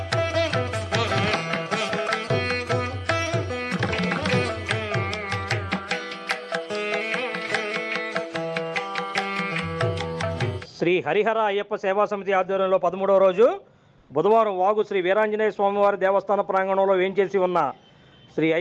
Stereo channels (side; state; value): both; identical; correlation 1.00